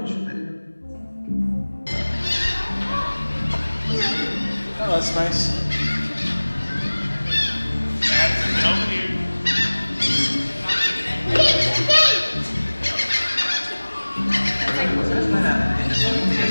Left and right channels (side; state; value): both; inverted; correlation -1.00